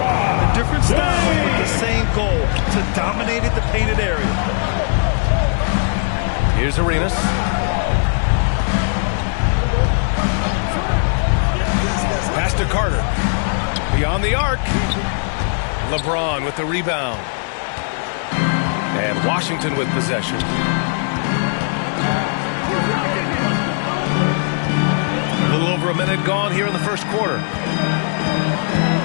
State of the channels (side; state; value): right; silent; 67 dB below the other